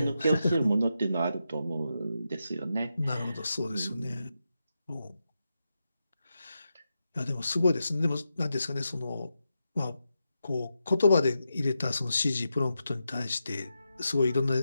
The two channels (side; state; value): both; inverted; correlation -0.87